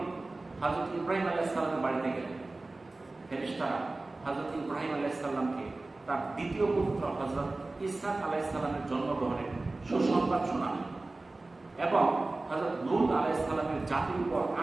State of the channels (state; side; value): quieter; left; 3.1 dB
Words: হযরত ইব্রাহিম আলাইহিস সালামের বাড়িতে গেলেন। ফেরেশতারা হযরত ইব্রাহিম আলাইহিস সালামকে তার দ্বিতীয় পুত্র হযরত ইসহাক আলাইহিস সালামের জন্মগ্রহণের সুসংবাদ শোনালেন এবং হযরত লূত আলাইহিস সালামের জাতির উপর